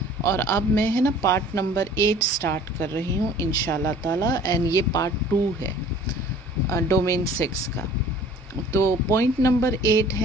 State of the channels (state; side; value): normal; both; correlation 0.49